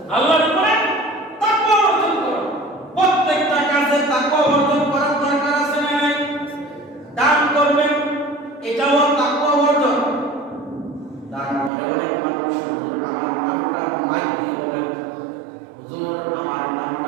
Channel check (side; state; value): left; drops out; at 11.7 s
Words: আল্লাহর উপরে তাকওয়া অর্জন করো। প্রত্যেকটা কাজে তাকওয়া অর্জন করার দরকার আছে না নাই? দান করবেন, এটাও তাকওয়া অর্জন। দান করে অনেক মানুষ হুজুর আমার নামটা মাইক দিয়ে বলেন, হুজুর আমার